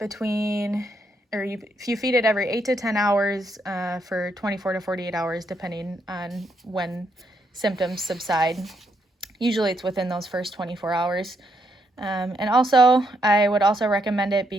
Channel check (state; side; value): normal; both; correlation 0.77